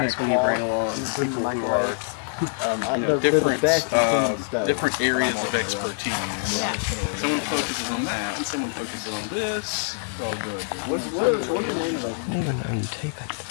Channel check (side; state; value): right; silent; digital silence